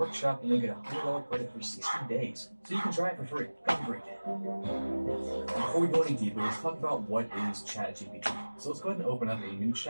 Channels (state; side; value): inverted; both; correlation -1.00